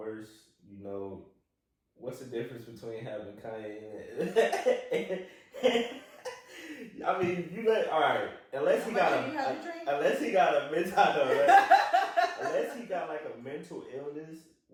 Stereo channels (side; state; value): both; identical; correlation 1.00